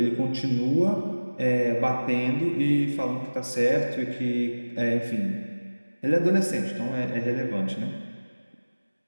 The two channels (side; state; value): both; inverted; correlation -1.00